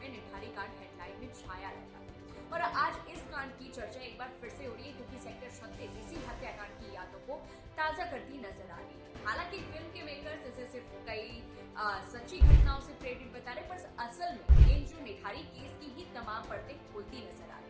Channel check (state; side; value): identical; both; correlation 1.00